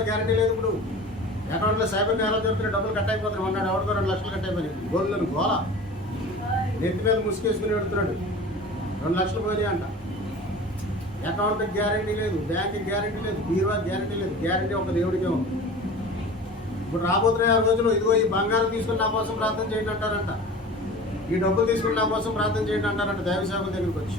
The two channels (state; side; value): normal; both; correlation 0.38